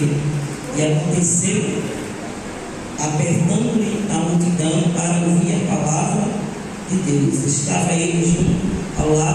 E aconteceu, apertando-lhe a multidão para ouvir a palavra de Deus, estava ele junto ao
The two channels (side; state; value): both; identical; correlation 1.00